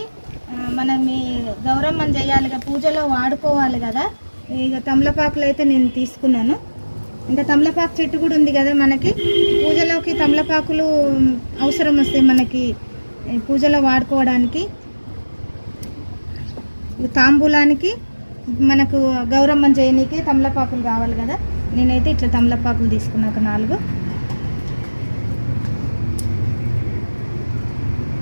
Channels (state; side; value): inverted; both; correlation -1.00